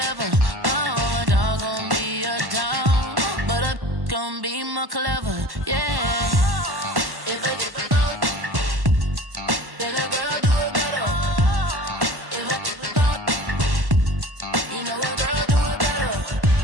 Oh, a dog gon' be a dog, but a gon' be more clever. Yeah.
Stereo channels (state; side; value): late; left; 1.1 ms